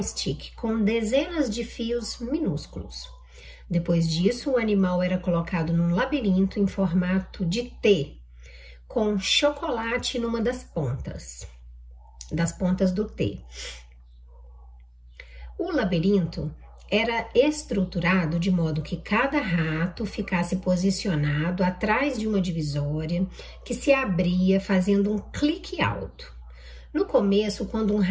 com dezenas de fios minúsculos. Depois disso, o animal era colocado num labirinto em formato de T, com chocolate numa das pontas do T. O labirinto era estruturado de modo que cada rato ficasse posicionado atrás de uma divisória que se abria fazendo um clique alto. No começo, quando um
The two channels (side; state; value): both; identical; correlation 1.00